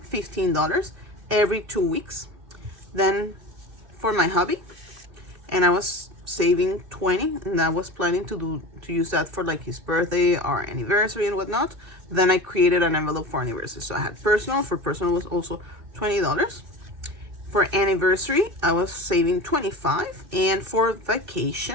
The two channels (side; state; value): left; late; 2.7 ms